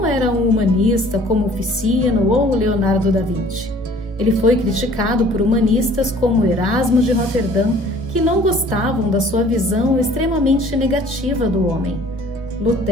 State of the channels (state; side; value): normal; both; correlation 0.52